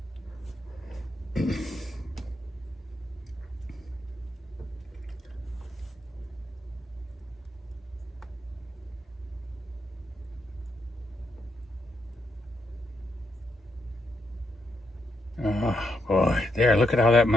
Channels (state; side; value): normal; both; correlation 0.80